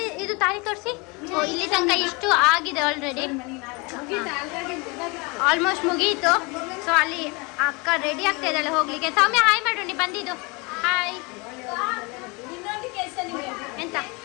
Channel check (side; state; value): right; quieter; 28.3 dB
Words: ಇದು ತಾಳಿ ತೋರಿಸಿ. ಇಲ್ಲಿ ತನಕ ಇಷ್ಟು ಆಗಿದೆ ಆಲ್ರೆಡಿ, ಆಲ್ಮೋಸ್ಟ್ ಮುಗೀತು. ಸೊ ಅಲ್ಲಿ ಅಕ್ಕ ರೆಡಿ ಆಗ್ತಾ ಇದ್ದಾಳೆ ಹೋಗ್ಲಿಕ್ಕೆ. ಸೌಮ್ಯ ಹಾಯ್ ಮಾಡು, ನೀ ಬಂದಿದ್ದು. ಹಾಯ್. ಎಂತ